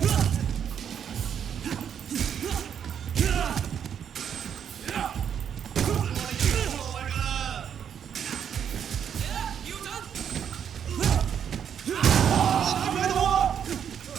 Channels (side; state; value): left; quieter; 8.4 dB